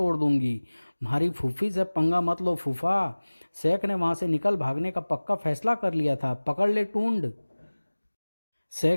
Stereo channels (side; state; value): both; inverted; correlation -1.00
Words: दूंगी। हमारी फूफी से पंगा मत लो फूफा। शेख ने वहां से निकल भागने का पक्का फैसला कर लिया था। पकड़ ले टूंड।